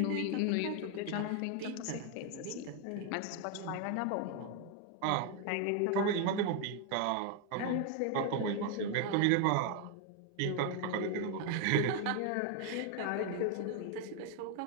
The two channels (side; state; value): both; different; correlation 0.01